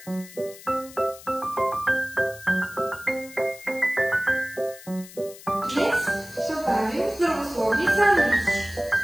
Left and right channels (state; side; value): noise; left; hiss, 18 dB below the sound